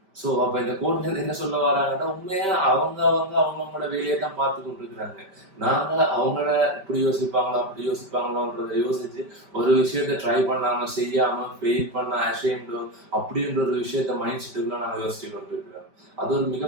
ஸோ அப்போ இந்த கோட்லேருந்து என்ன சொல்ல வராங்கன்னா, உண்மையா அவங்களோட வேலையை தான் பார்த்து கொண்டு இருக்கிறாங்க. நாங்கள் அவங்கள இப்படி யோசிப்பாங்களோ அப்படி யோசிப்பாங்களோன்றதை யோசிச்சு ஒரு விஷயத்த ட்ரை பண்ணாமல் செய்யாமல் ஃபெயில் பண்ண அஷேம்டு அப்படின்ற ஒரு விஷயத்த மைண்ட் செட்டுக்குள்ள நாங்கள் யோசிச்சு கொண்டு இருக்கிறோம். அது ஒரு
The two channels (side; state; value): left; late; 5.1 ms